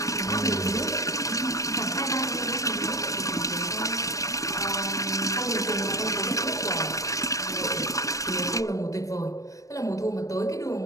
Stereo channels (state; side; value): late; right; 0.16 ms